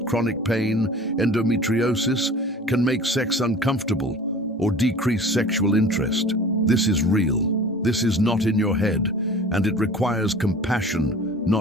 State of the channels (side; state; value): both; normal; correlation 0.42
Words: chronic pain, endometriosis, can make sex uncomfortable or decrease sexual interest. This is real. This is not in your head, and it requires compassion,